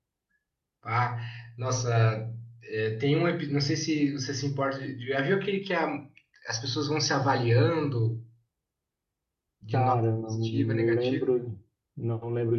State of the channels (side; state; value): both; identical; correlation 1.00